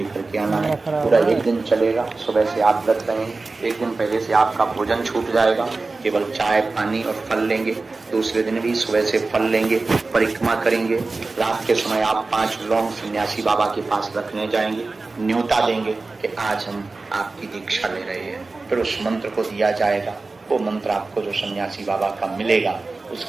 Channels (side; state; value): left; quieter; 3.6 dB